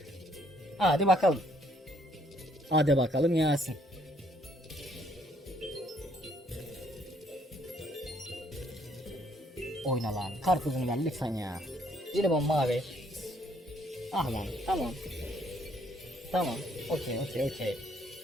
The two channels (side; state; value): both; normal; correlation 0.67